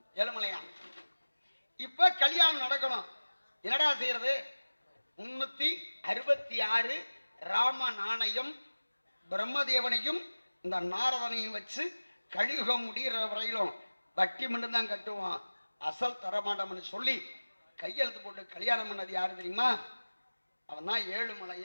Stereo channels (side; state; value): both; inverted; correlation -1.00